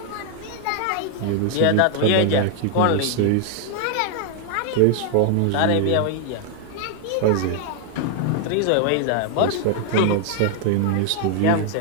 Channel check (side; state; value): both; different; correlation 0.00